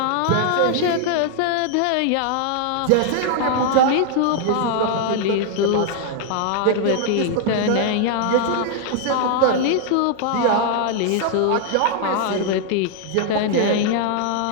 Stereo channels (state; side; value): different; both; correlation 0.00